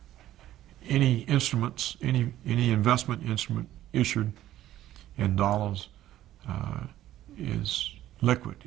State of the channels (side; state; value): left; quieter; 13.4 dB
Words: any instruments, any investment instrument issued in dollars is liquid.